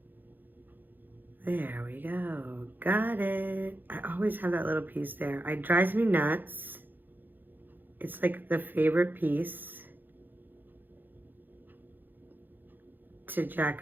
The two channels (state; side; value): late; left; 0.090 ms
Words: There we go, got it. I always have that little piece there. It drives me nuts. It's like the favorite piece to